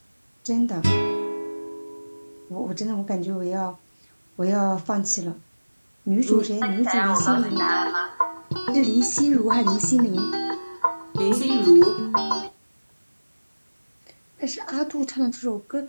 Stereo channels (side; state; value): both; inverted; correlation -1.00